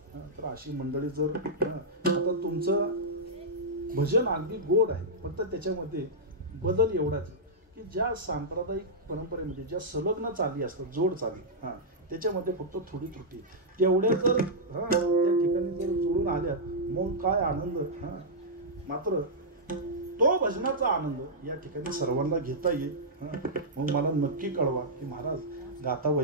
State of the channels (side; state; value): both; normal; correlation -0.10